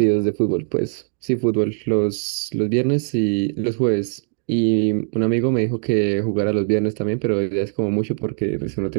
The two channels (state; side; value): silent; left; 58 dB below the other